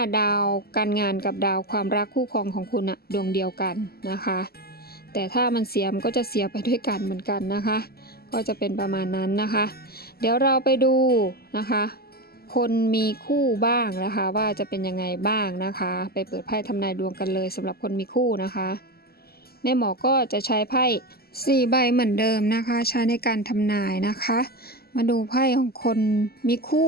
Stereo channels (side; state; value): right; late; 0.45 ms